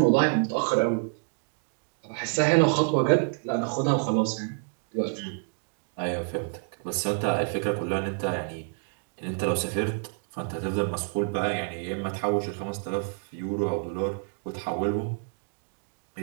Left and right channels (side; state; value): left; silent; 59 dB below the other